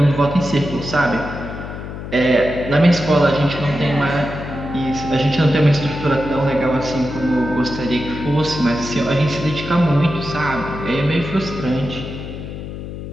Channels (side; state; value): left; noise; hum, 9 dB below the sound